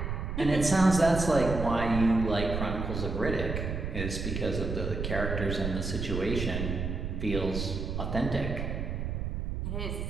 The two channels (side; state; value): right; noise; rumble, 3 dB below the sound